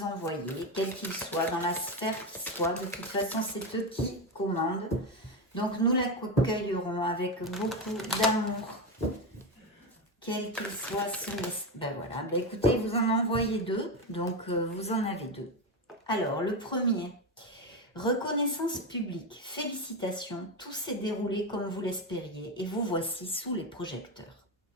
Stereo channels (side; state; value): both; normal; correlation 0.14